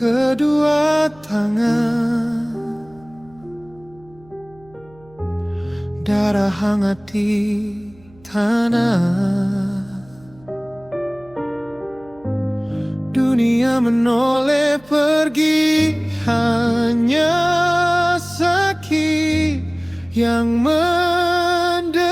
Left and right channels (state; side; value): noise; right; hum, 27 dB below the sound